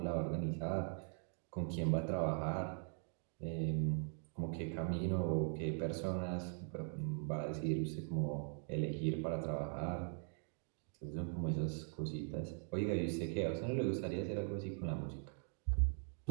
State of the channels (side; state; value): left; silent; 50 dB below the other